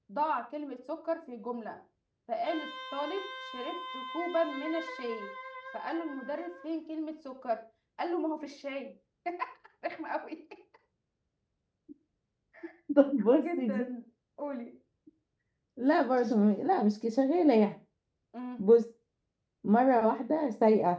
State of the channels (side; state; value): both; identical; correlation 1.00